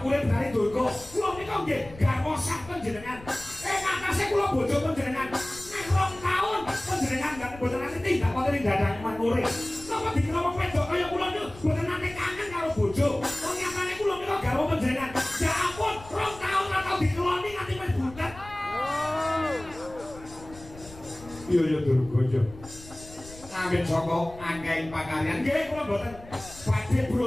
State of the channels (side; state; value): left; noise; rumble, 18 dB below the sound